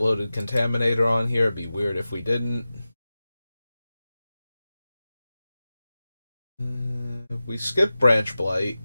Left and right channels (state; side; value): inverted; both; correlation -0.95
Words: Contaminator on here. It'd be weird if we didn't. We skipped Branch Blight.